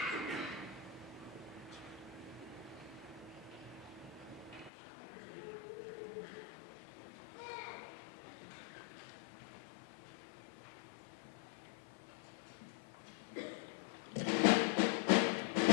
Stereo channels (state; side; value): drops out; right; at 4.7 s